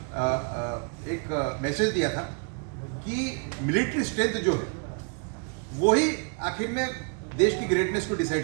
एक मैसेज दिया था कि मिलिट्री स्ट्रेंथ जो है वो ही आखिर में देश की ग्रेटनेस को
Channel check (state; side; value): quieter; left; 39.3 dB